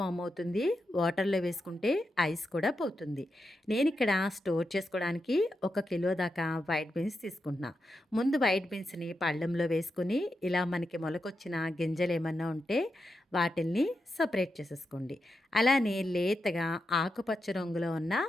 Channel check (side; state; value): both; normal; correlation 0.87